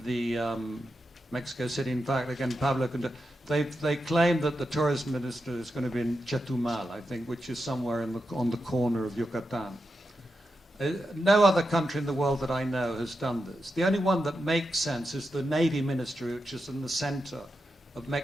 the Mexico City. In fact, again, Pablo, they claim that the tourism minister is going to be in Chetumal, I think, which is somewhere on the corner of Yucatan. No other country in the world that I know has done this. The only one that makes sense is the Navy Ministry, which is in the center of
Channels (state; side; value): normal; both; correlation 0.87